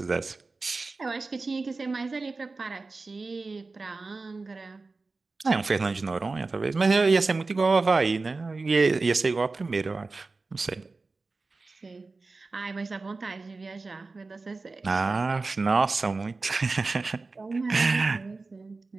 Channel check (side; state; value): left; quieter; 3.8 dB